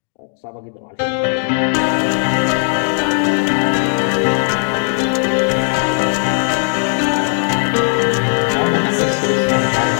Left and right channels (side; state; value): right; silent; digital silence